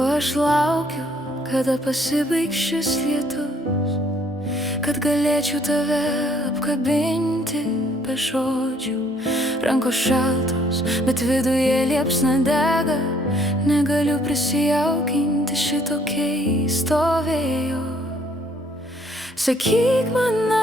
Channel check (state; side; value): normal; both; correlation 0.64